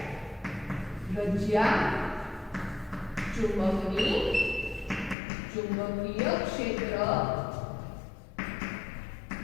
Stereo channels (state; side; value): drops out; right; at 5.2 s